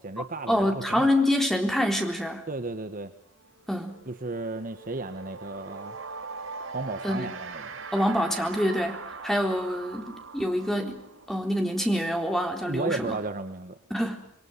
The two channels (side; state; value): both; normal; correlation 0.77